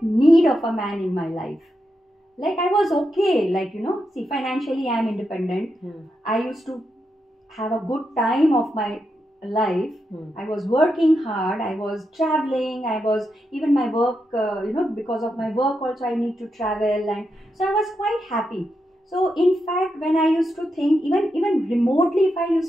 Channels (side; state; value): both; normal; correlation 0.85